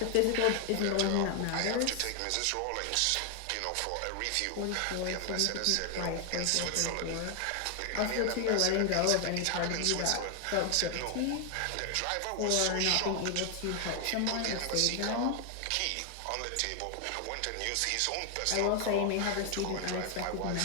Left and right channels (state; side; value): different; both; correlation 0.00